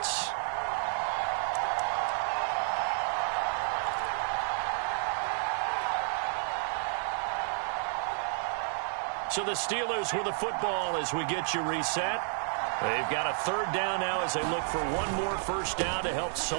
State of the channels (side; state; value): left; silent; digital silence